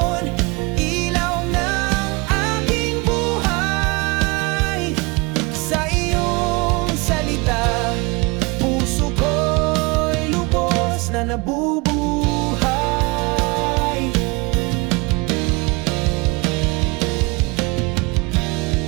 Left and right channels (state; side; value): quieter; left; 26.5 dB